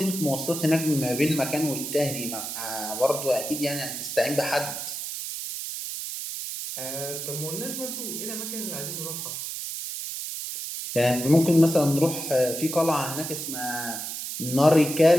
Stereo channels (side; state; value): right; noise; hiss, 6 dB below the sound